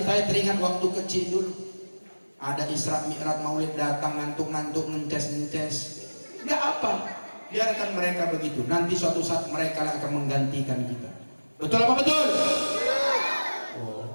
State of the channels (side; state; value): both; inverted; correlation -1.00